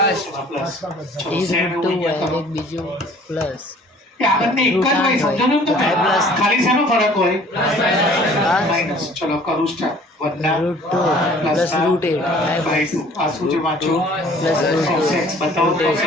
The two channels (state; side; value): normal; both; correlation 0.52